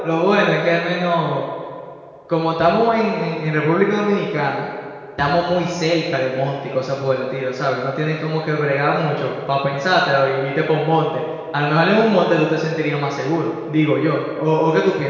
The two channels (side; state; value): both; identical; correlation 1.00